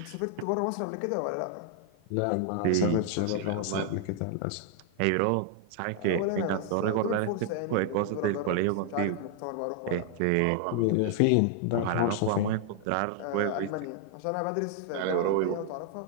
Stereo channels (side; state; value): both; different; correlation 0.00